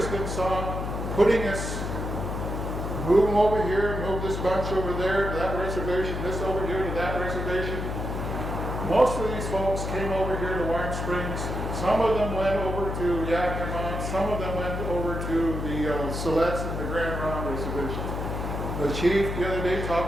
saw putting us, move them over here, move this bunch over there to that reservation, this over here to that reservation. Most of these folks came over here to Warm Springs. Some of them went over to Yakima. Some of them went over to the Siletz and the Grand Ronde reservations. The chief the other day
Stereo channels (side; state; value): left; noise; hum, 4 dB below the sound